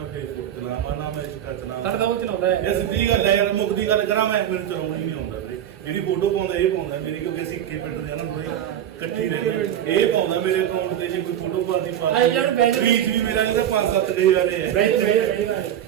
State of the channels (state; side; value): quieter; left; 10.6 dB